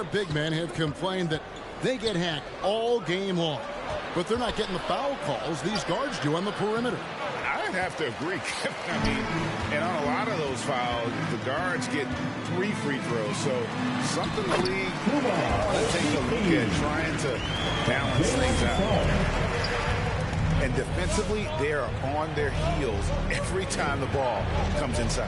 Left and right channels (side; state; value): both; identical; correlation 1.00